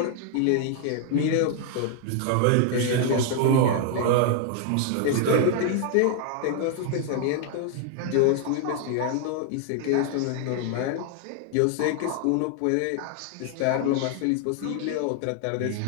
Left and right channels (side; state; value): both; different; correlation 0.00